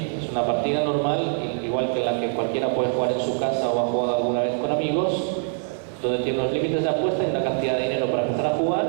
es una partida normal, igual que la que cualquiera puede jugar en su casa o ha jugado alguna vez con amigos, donde tiene unos límites de apuesta y una cantidad de dinero para empezar a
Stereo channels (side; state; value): left; silent; digital silence